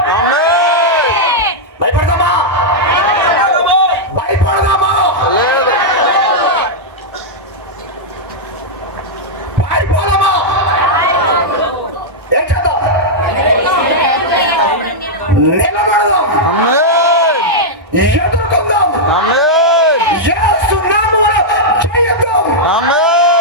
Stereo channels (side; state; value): both; normal; correlation -0.06